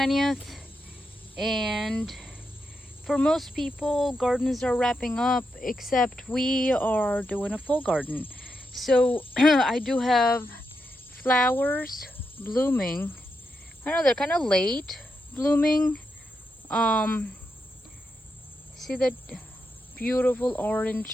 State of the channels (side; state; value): both; normal; correlation 0.85